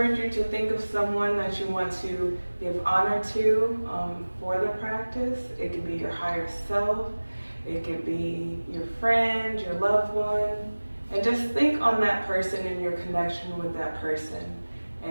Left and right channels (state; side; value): inverted; both; correlation -1.00